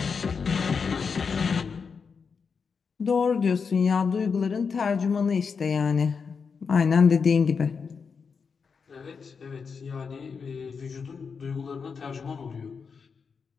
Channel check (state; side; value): quieter; right; 5.6 dB